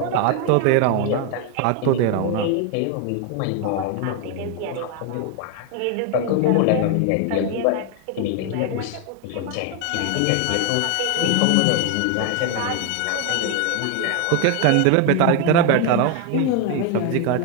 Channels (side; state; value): both; different; correlation 0.01